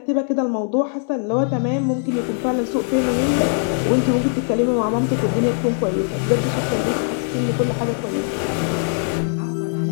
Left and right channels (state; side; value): silent; right; 65 dB below the other